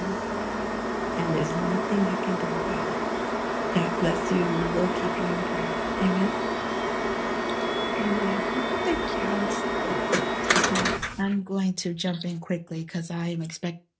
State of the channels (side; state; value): both; identical; correlation 1.00